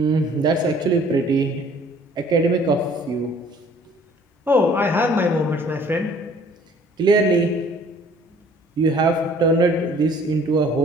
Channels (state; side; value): normal; both; correlation 0.55